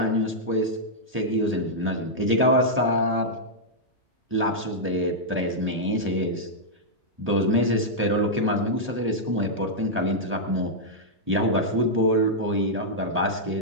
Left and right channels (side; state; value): both; normal; correlation -0.07